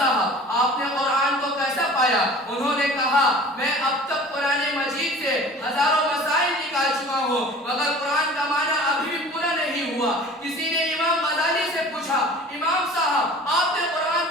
آپ نے قرآن کو کیسا پایا؟ انہوں نے کہا میں اب تک قرآن مجید سے ہزاروں مسائل نکال چکا ہوں مگر قرآن کا معنی ابھی بھی پورا نہیں ہوا. کسی نے امام غزالی سے پوچھا، امام صاحب آپ نے قرآن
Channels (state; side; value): normal; both; correlation 0.44